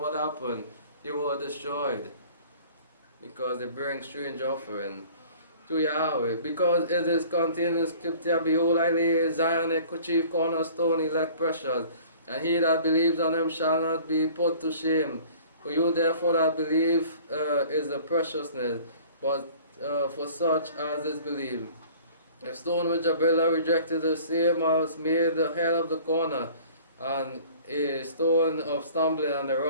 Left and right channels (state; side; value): inverted; both; correlation -0.49